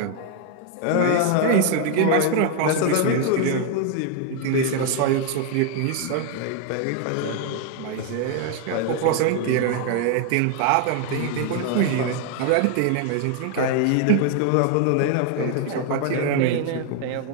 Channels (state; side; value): different; both; correlation 0.01